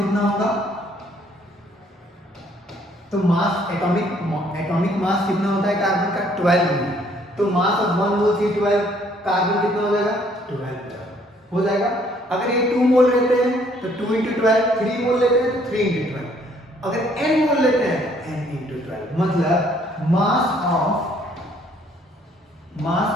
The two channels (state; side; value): normal; both; correlation 0.63